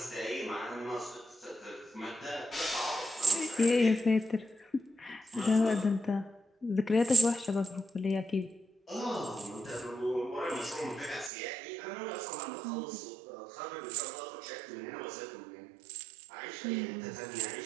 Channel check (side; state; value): left; drops out; at 11.3 s